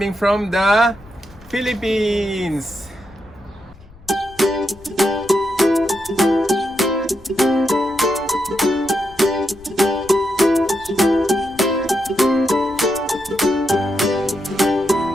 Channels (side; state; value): left; noise; rumble, 24 dB below the sound